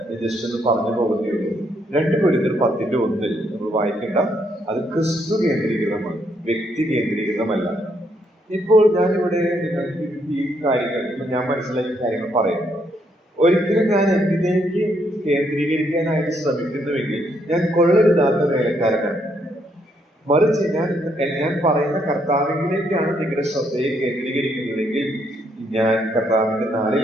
ജസ്റ്റ് ഒന്ന് പറഞ്ഞു പോകുന്നേ. 2 കൊരിന്ത്യർ 10:1 നമ്മൾ വായിക്കേണ്ട. അത് ക്രിസ്തു കേന്ദ്രീകൃതമാണ്, വ്യക്തി കേന്ദ്രീകൃതമല്ല. ഇപ്പോൾ ഞാനിവിടെ നിങ്ങൾക്ക് ഈ കാര്യങ്ങൾ, ഞാൻ മനസ്സിലാക്കിയ കാര്യങ്ങൾ പറയുന്നു. ഒരിക്കലും ഞാൻ എന്നിലേക്ക് കേന്ദ്രീകരിക്കാനായിട്ട് ശ്രമിക്കുന്നുവെങ്കിൽ ഞാൻ കൊള്ളരുതാത്ത വേലക്കാരനാണ്. മറിച്ച് ഞാൻ പറയുന്ന കർത്താവിലേക്കാണ് നിങ്ങളുടെ ശ്രദ്ധയെ കേന്ദ്രീകരിക്കുന്നതെങ്കിൽ ഞാൻ കർത്താവിന്റെ നാളിൽ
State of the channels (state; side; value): normal; both; correlation 0.73